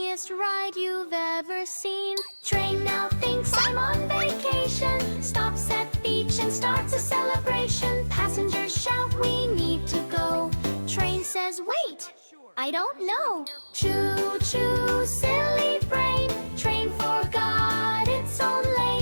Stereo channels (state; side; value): inverted; both; correlation -1.00